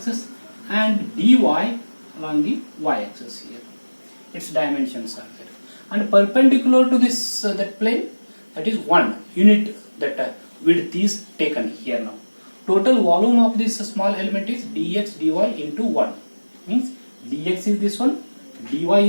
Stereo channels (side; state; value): both; inverted; correlation -1.00